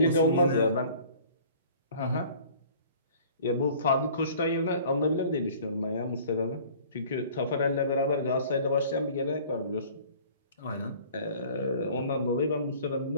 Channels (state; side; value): inverted; both; correlation -0.50